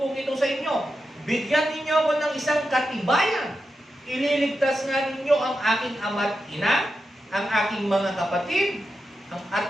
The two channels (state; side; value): normal; both; correlation 0.89